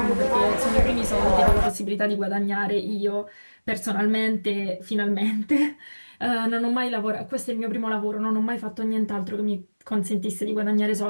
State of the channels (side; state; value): both; inverted; correlation -1.00